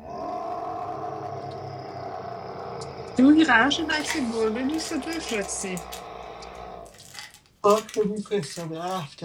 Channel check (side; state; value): both; identical; correlation 1.00